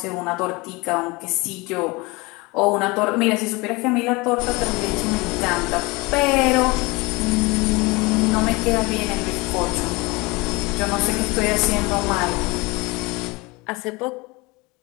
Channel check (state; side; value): quieter; right; 24.7 dB